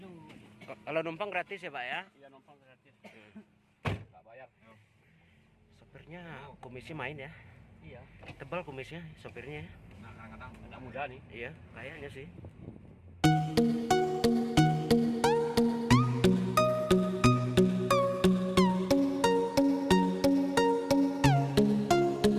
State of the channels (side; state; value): both; identical; correlation 1.00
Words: Kalau numpang gratis ya, Pak ya? Iya, numpang gratis. Enggak bayar. Sopirnya komisi main ya? Iya. Tebal kumisnya sopirnya. Nah, kadang-kadang muda nih. Iya, kayaknya sih.